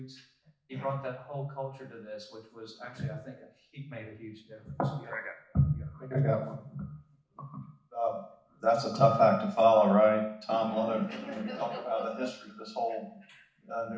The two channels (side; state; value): both; identical; correlation 1.00